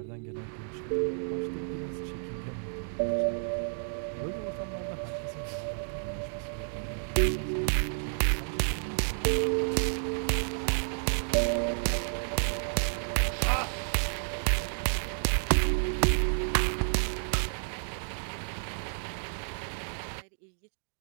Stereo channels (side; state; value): left; silent; digital silence